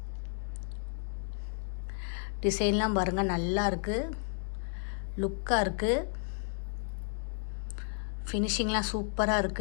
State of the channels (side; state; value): right; silent; 56 dB below the other